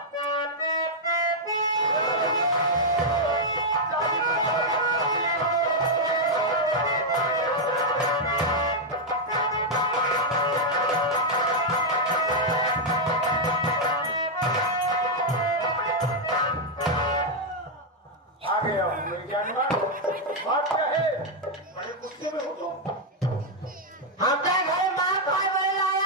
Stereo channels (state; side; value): normal; both; correlation -0.02